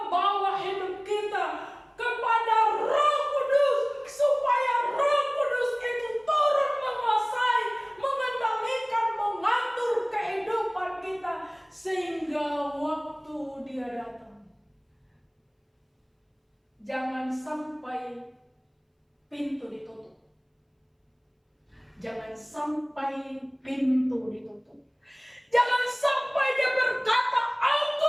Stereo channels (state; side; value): identical; both; correlation 1.00